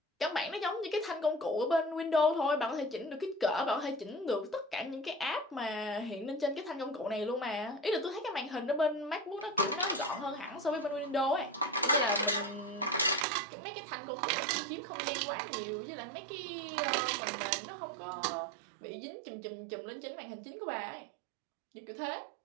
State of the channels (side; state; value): left; drops out; at 13.2 s